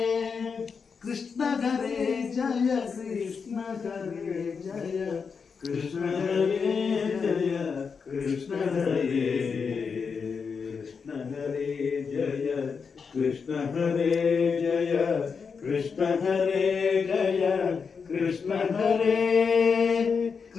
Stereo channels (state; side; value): quieter; right; 5.7 dB